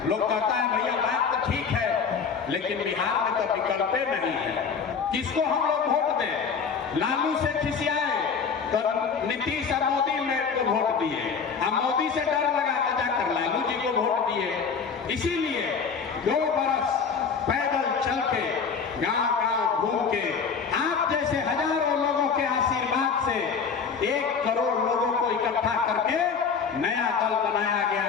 लोग कहता है भैया बात तो ठीक है, लेकिन बिहार में तो विकल्पे नहीं है। किसको हम लोग वोट दें? लालू से खिसियाए तो नीतीश और मोदी को वोट दिए, हम मोदी से डर लगा के जाकर लालू जी को वोट दिए। इसीलिए 2 बरस पैदल चल के गांव-गांव घूम के आप जैसे हजारों लोगों के आशीर्वाद से 1 करोड़ लोगों को इकट्ठा करके नया दल बनाया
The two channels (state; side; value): quieter; right; 6.0 dB